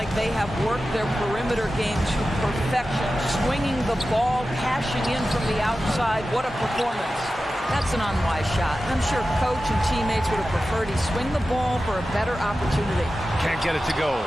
they have worked their perimeter game to perfection, swinging the ball, cashing in from the outside. What a performance. That's an unwise shot. I'm sure coach and teammates would have preferred he swing the ball for a better opportunity. Can't get it to go.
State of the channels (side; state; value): both; normal; correlation 0.94